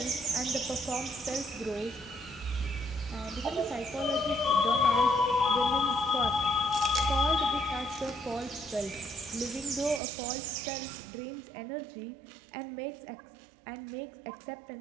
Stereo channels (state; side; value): drops out; left; at 10.0 s